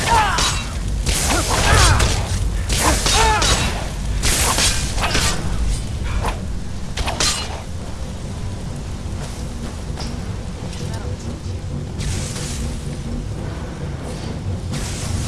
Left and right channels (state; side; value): identical; both; correlation 1.00